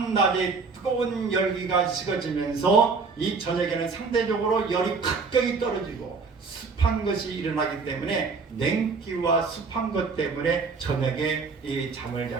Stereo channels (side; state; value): left; quieter; 4.6 dB